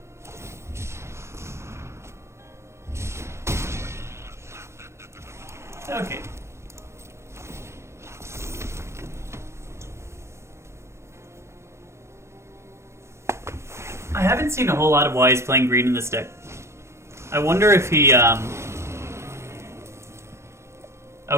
Okay. I haven't seen a whole lot of why he's playing green in this deck. I wonder if he,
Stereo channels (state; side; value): late; left; 0.13 ms